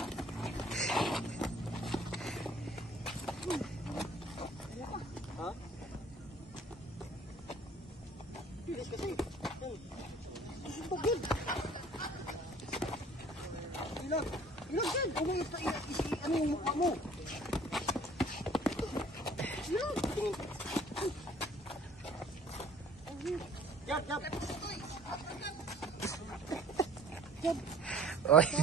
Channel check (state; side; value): normal; both; correlation 0.52